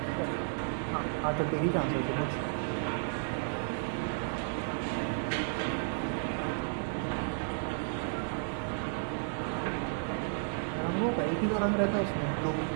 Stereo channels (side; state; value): left; silent; digital silence